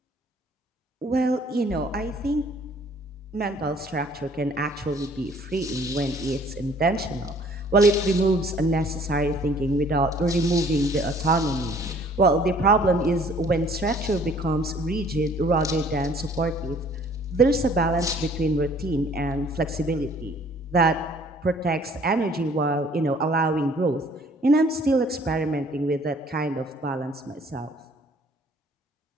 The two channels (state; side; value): normal; both; correlation 0.57